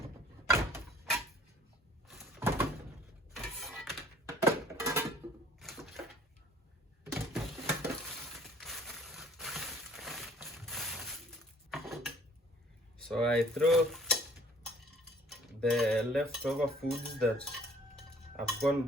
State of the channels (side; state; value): both; normal; correlation 0.54